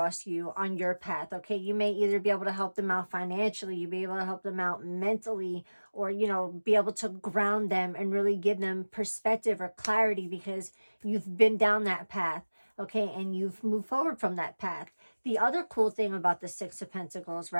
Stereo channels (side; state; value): both; inverted; correlation -1.00